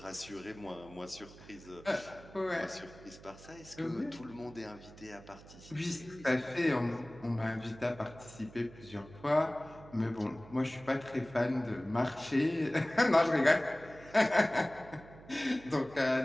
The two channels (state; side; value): noise; right; hum, 19 dB below the sound